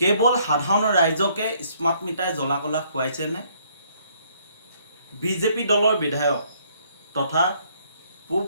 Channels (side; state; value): both; inverted; correlation -0.66